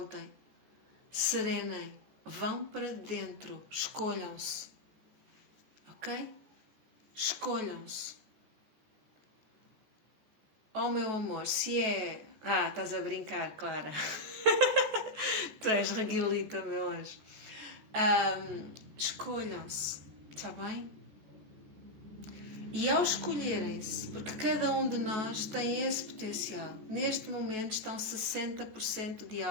serenem, vão para dentro, escolham-se. Ok? Escolham-se. Oh, meu amor, se é... estás a brincar, Clara. Tu és reguilita, meu anjo. Escolham-se, está bem? E ao escolherem-se, porque cada um de nós tem esse potencial, neste momento estão 60% de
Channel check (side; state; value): left; late; 14 ms